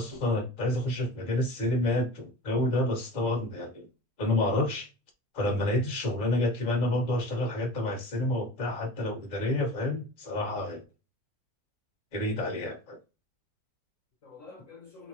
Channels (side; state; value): both; normal; correlation 0.37